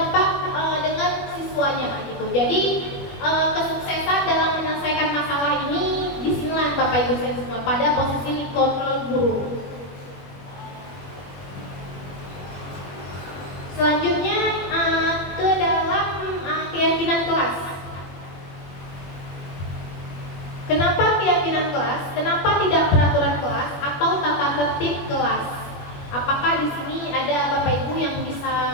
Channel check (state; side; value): late; right; 21 ms